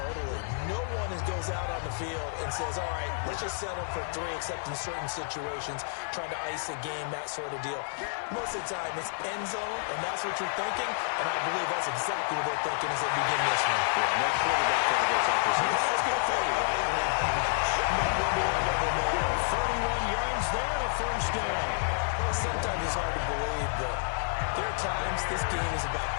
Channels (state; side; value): silent; right; 58 dB below the other